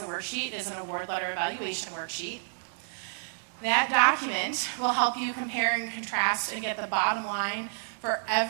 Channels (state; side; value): silent; left; digital silence